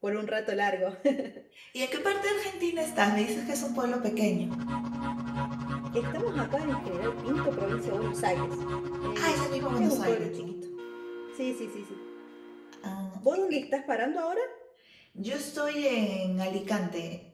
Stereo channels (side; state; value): both; identical; correlation 1.00